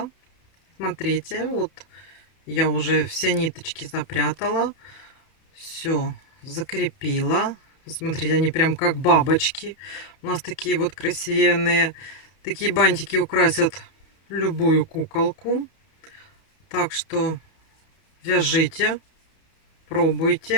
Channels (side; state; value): right; late; 31 ms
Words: Смотрите, вот я уже все ниточки запрятала. Все закрепила. Смотрите, они прям как бабочки. У нас такие вот красивенные. Такие бантики украсят любую куколку. Так что вяжите,